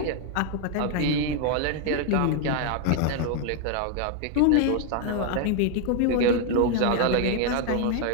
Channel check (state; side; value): different; both; correlation 0.00